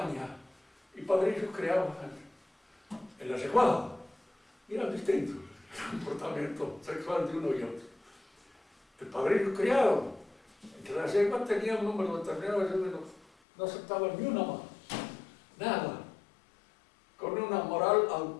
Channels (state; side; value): drops out; right; at 13.2 s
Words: y padrillos criados en la yeguada, y eran distintos el comportamiento sexual de uno y otro. El padrillo criado entre la yegua tenía un número determinado, no aceptaba ni una más, nada, con una moral